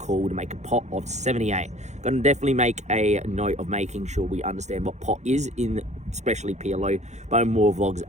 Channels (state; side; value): late; left; 0.33 ms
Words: to make a pot of 78. Going to definitely make a note of making sure we understand what pot is in especially PLO, but more vlogs